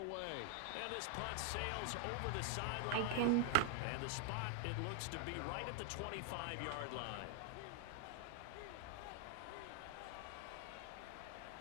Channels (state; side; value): different; both; correlation 0.00